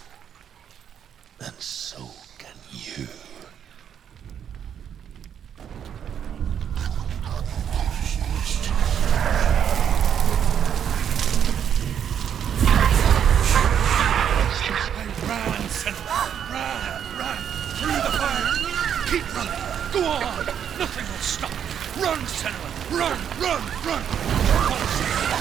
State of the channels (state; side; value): quieter; left; 8.7 dB